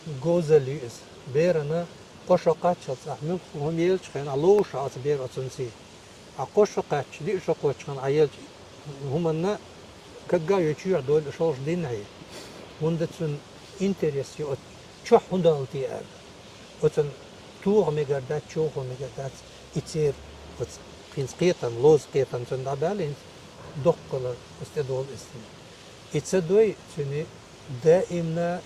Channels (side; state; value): both; identical; correlation 1.00